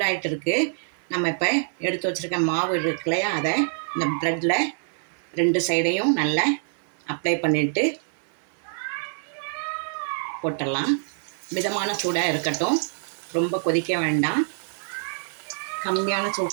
இருக்குது. நம்ம இப்போ எடுத்து வச்சுருக்க மாவு இருக்கு இல்லையா, அதை இந்த ப்ரெட்டில் 2 சைடையும் நல்லா அப்ளை பண்ணிவிட்டு போட்டுடலாம். மிதமான சூடாக இருக்கட்டும், ரொம்ப கொதிக்க வேண்டாம். கம்மியான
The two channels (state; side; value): silent; left; digital silence